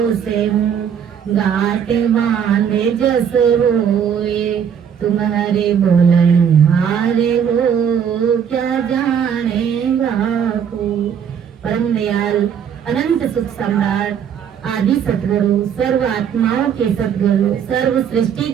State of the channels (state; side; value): quieter; left; 8.0 dB